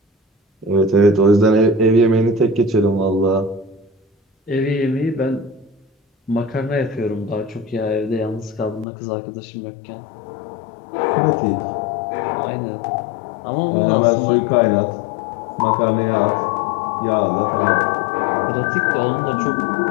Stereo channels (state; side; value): drops out; right; at 8.8 s